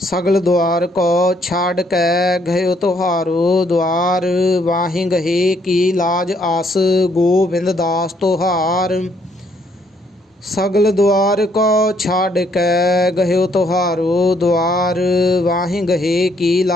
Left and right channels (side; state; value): both; normal; correlation 0.69